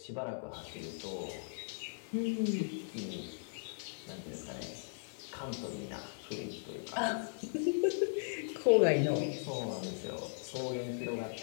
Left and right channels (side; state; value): right; silent; 53 dB below the other